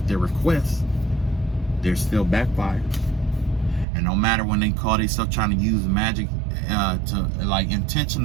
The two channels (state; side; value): drops out; left; at 3.9 s